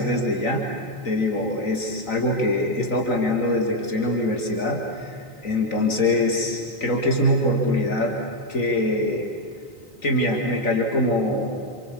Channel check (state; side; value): late; right; 3.9 ms